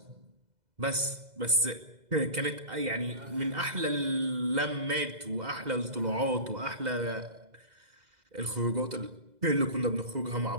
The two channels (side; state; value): left; late; 2.0 ms